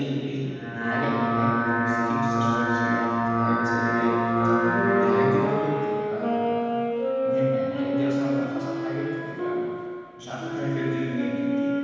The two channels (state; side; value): identical; both; correlation 1.00